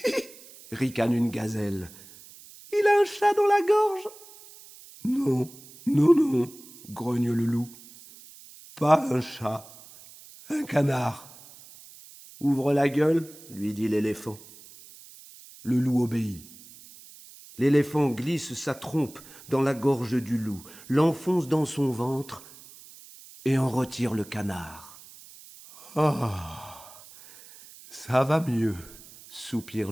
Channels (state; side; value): noise; right; hiss, 20 dB below the sound